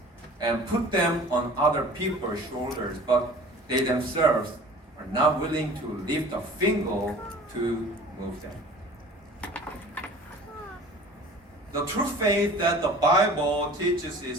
and put them on other people's shoulders, but they themselves are not willing to lift a finger to move them. The true faith that the Bible teaches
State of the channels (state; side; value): normal; both; correlation 0.44